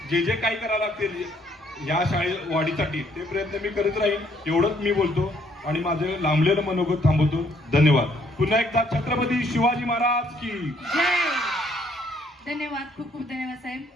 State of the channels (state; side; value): normal; both; correlation 0.66